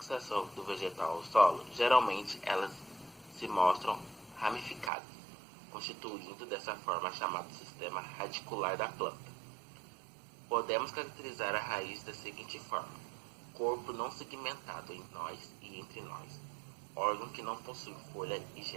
do vegetal ao solo, geralmente elas se mostram ramificadas, constituindo dessa forma a chamada sistema radicular da planta. Podemos caracterizar a raiz da seguinte forma: corpo não segmentado em nós e entre nós, órgão que não possui folha e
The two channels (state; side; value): drops out; left; at 4.9 s